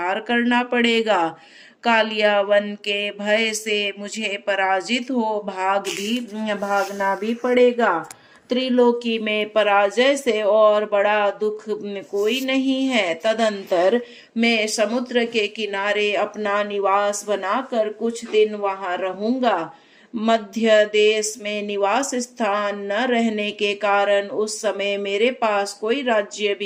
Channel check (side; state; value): both; identical; correlation 1.00